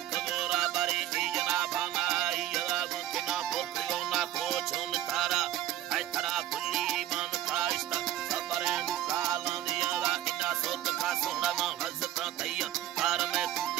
बारे की जनाबाना यदा गुना पोखियो ना कोचोन तारा आई तरा बुल्ली मान काइस्ता सबरे काला दिया ला इना सोत का सोना मा हजता तैया कार में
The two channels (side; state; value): left; quieter; 12.8 dB